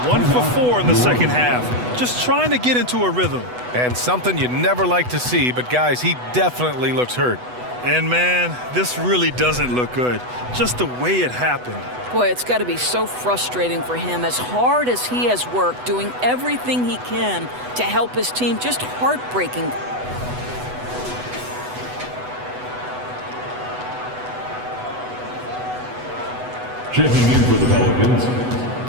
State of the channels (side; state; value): left; late; 8.1 ms